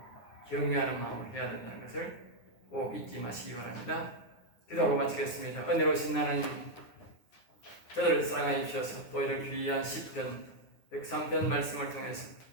경외하는 마음으로 해야 된다는 것을 꼭 잊지 마시기 바랍니다. 기도하고 마치겠습니다. 은혜로우신 하나님, 저들을 사랑하여 주셔서 또 이런 귀한 시편 103편 말씀을 통해서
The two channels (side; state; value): right; late; 9.4 ms